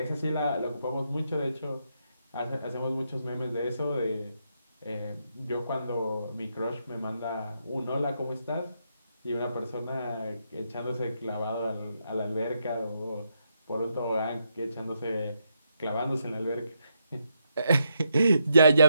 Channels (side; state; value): both; inverted; correlation -0.80